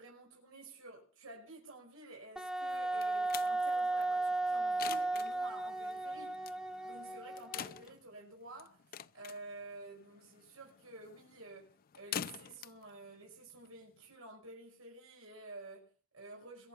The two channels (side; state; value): both; normal; correlation 0.82